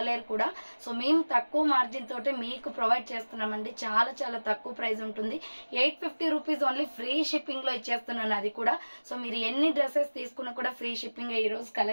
కూడా. సో మేము తక్కువ మార్జిన్ తోటి మీకు ప్రొవైడ్ చేస్తున్నామండి. చాలా చాలా తక్కువ ప్రైస్ ఉంటుంది. 850 రూపీస్ ఓన్లీ ఫ్రీ షిప్పింగ్ లో ఇచ్చేస్తున్నాను అది కూడా. సో మీరు ఎన్ని డ్రెస్సెస్ తీసుకున్నా కూడా ఫ్రీ షిప్పింగ్. ఈ రోజు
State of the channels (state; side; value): inverted; both; correlation -1.00